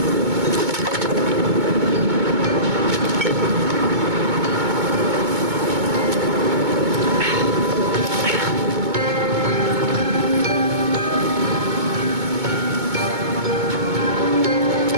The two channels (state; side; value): late; left; 2.2 ms